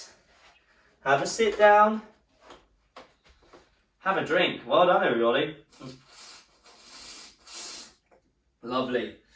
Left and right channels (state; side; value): identical; both; correlation 1.00